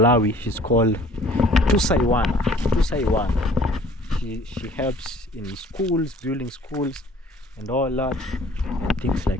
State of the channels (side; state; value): both; normal; correlation 0.52